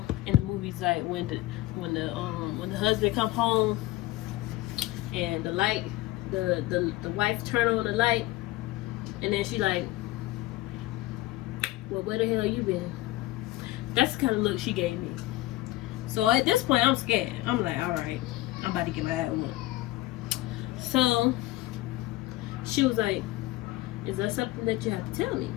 in the movies, like when the husband come home and the light, the wife turn on the light, and then she like, well, where the hell you been? That's the kind of look she gave me. So at this point, I'm scared. I'm like, all right, I'm about to get my ass whooped. So she was like, is that something that you have to tell me?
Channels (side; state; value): right; quieter; 17.4 dB